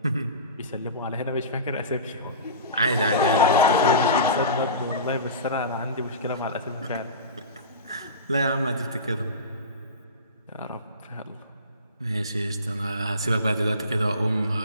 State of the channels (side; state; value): both; inverted; correlation -0.31